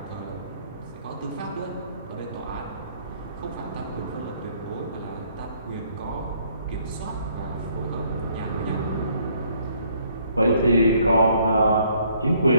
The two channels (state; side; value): inverted; both; correlation -0.65